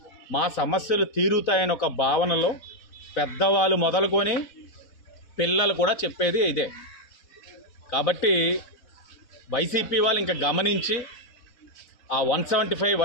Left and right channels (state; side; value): late; right; 4.0 ms